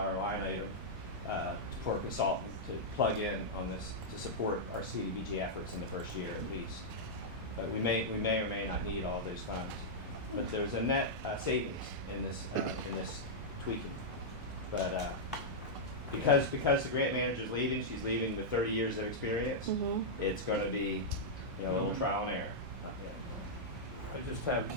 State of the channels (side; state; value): both; normal; correlation -0.08